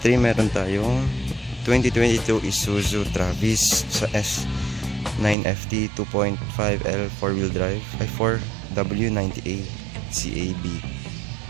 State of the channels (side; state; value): left; drops out; at 5.4 s